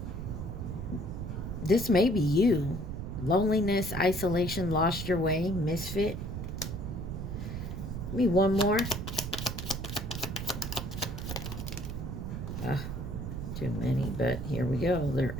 This may be you. Loneliness, isolation, lost your way, misfit. Give me one more. Too many, but here we go. They're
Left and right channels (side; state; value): right; noise; rumble, 5 dB below the sound